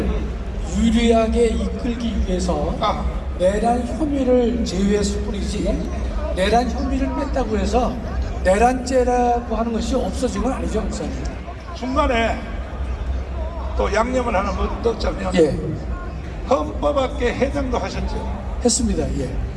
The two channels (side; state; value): both; identical; correlation 1.00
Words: 유리하게 이끌기 위해서 내란 혐의를 제외했을 뿐이지 내란 혐의를 뺐다고 해서 내란죄라고 하는 것이 없어진 건 아니죠, 목사님. 중간에 또 양념을 하나 넣자면 헌법학계 회장도 하셨죠. 했습니다.